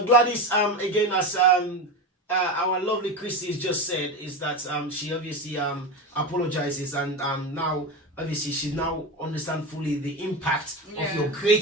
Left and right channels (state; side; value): normal; both; correlation 0.20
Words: Gladys, again, as our lovely Christie has just said, is that she obviously apologizes and now. Obviously, she now understands fully the impact of your